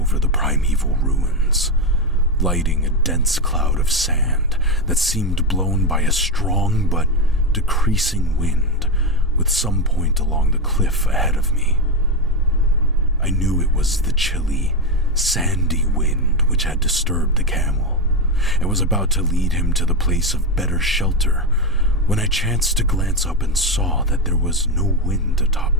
the primeval ruins, lighting a dense cloud of sand that seemed blown by a strong but decreasing wind with some point along the cliff ahead of me. I knew it was the chilly, sandy wind which had disturbed the camel and was about to lead him to the place of better shelter when I chanced to glance up and saw that there was no wind atop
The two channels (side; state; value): both; normal; correlation 0.10